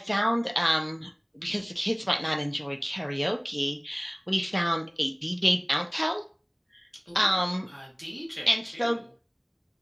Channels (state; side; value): identical; both; correlation 1.00